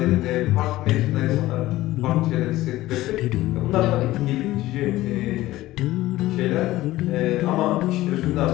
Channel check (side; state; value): right; quieter; 16.6 dB